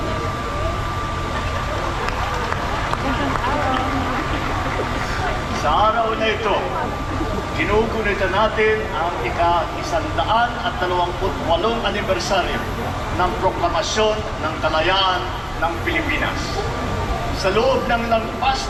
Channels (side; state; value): both; identical; correlation 1.00